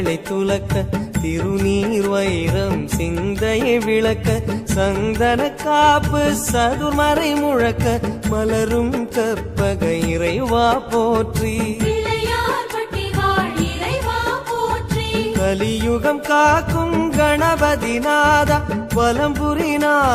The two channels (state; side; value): identical; both; correlation 1.00